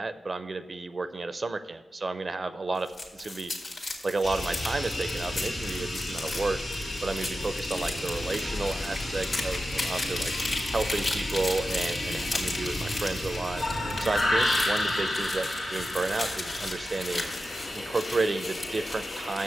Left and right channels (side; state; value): both; normal; correlation 0.91